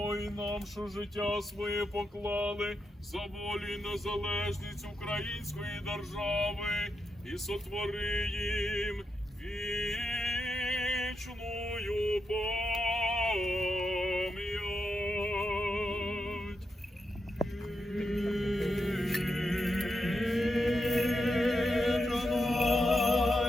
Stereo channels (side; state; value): both; normal; correlation 0.85